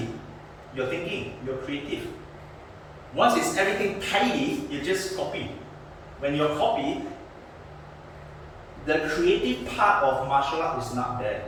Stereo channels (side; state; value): both; identical; correlation 1.00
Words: you're thinking, you're creative. Once it's everything tidy, you just copy. When you copy, the creative part of martial art is not there.